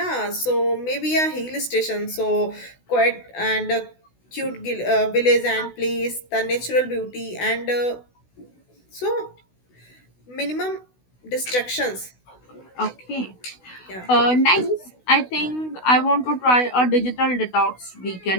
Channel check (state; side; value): late; right; 16 ms